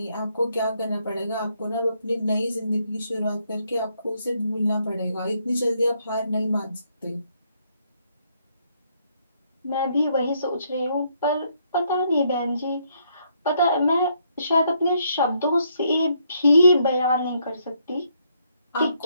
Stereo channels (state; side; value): inverted; both; correlation -0.72